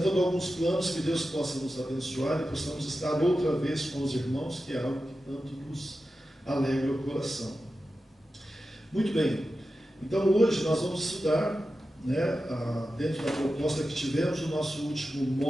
alguns planos que Deus possa nos abençoar e possamos estar outra vez com os irmãos, que é algo que tanto nos alegra o coração. Muito bem, então hoje nós vamos estudar, né, dentro da proposta que tivemos, o nosso último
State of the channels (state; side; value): normal; both; correlation 0.92